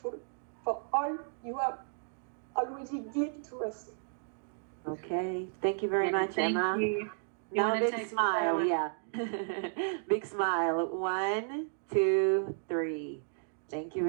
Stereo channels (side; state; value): left; silent; digital silence